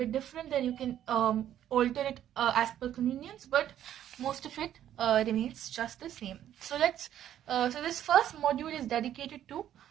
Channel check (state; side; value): quieter; left; 11.2 dB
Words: different, then you can alter it as per convenience, but most of it remains just the same. So so this first module is dedicated to